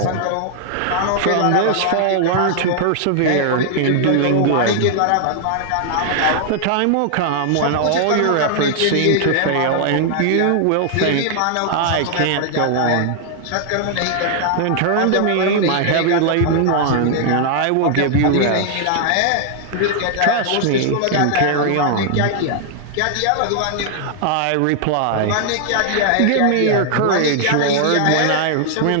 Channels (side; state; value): both; different; correlation 0.00